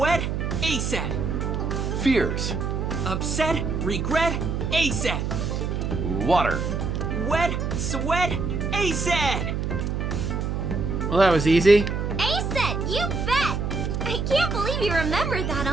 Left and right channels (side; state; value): right; noise; hum, 1 dB below the sound